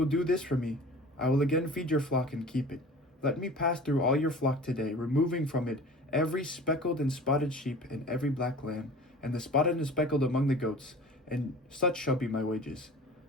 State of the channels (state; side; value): normal; both; correlation 0.41